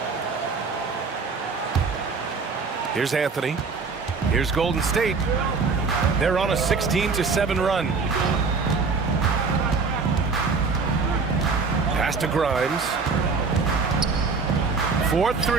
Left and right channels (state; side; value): quieter; left; 4.7 dB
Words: Here's Anthony. Here's Golden State. They're on a 16-7 run. Pass to Grimes.